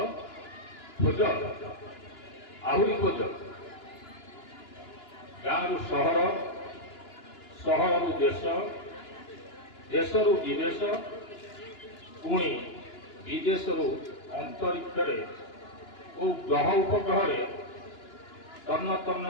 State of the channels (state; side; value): late; right; 2.9 ms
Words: খোঁজ আହୁରି ଖୋଜ। ଗାଁରୁ ସହର, ସହରରୁ ଦେଶ, ଦେଶରୁ ବିଦେଶ, ପୁଣି ବିଦେଶରୁ ଅନ୍ତରିକ୍ଷରେ ଓ ଗ୍ରହ ଉପଗ୍ରହରେ ତନ୍ନ ତନ୍ନ